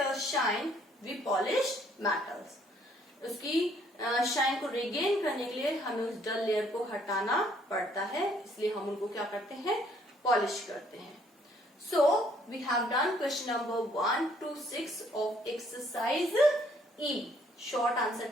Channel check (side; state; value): both; normal; correlation 0.65